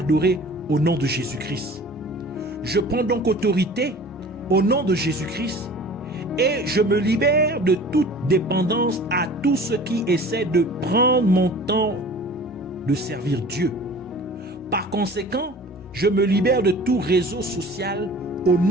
au nom de Jésus-Christ. Je prends donc autorité au nom de Jésus-Christ et je me libère de toute dépendance à tout ce qui essaie de prendre mon temps de servir Dieu. Par conséquent, je me libère de tout réseau social au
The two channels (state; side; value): normal; both; correlation 0.44